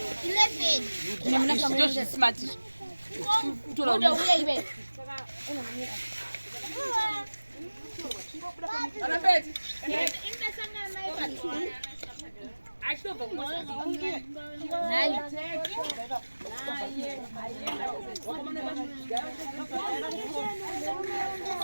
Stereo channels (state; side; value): inverted; both; correlation -1.00